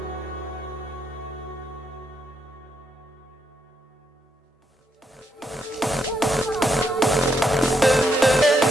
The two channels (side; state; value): both; normal; correlation 0.78